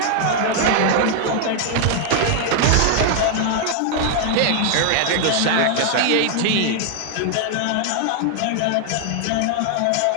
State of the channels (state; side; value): different; both; correlation 0.00